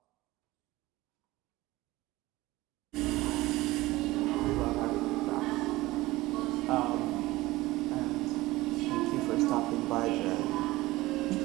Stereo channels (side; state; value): left; quieter; 18.8 dB